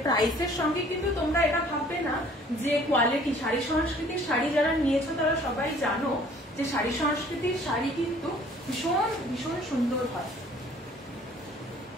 প্রাইসের সঙ্গে কিন্তু তোমরা এটা ভাববে না যে কোয়ালিটি। শাড়ি সংস্কৃতির শাড়ি যারা নিয়েছো তারা সবাই জানো যে শাড়ি সংস্কৃতির শাড়ি কিন্তু ভীষণ ভীষণ সুন্দর হয়।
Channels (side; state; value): both; normal; correlation 0.54